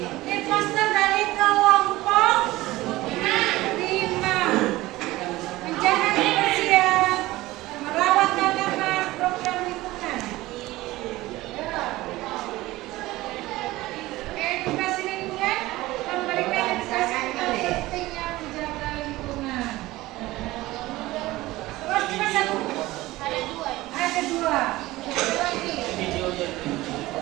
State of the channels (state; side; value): quieter; left; 18.2 dB